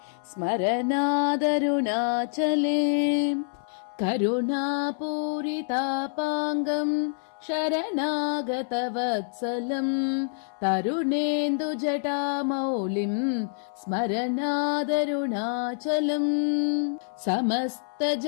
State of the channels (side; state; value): right; silent; 58 dB below the other